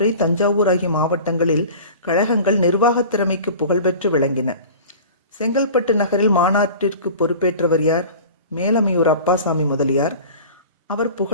தஞ்சாவூர் ஆகிய மாவட்டங்களில் கழகங்கள் நிர்வாக திறமைக்கு புகழ்பெற்று விளங்கின. செங்கல்பட்டு நகரில் மாநாட்டிற்கு பொறுப்பேற்றவர் யார்? மேலமையூர் அப்பாசாமி முதலியார். அவர்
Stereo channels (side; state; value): both; inverted; correlation -0.39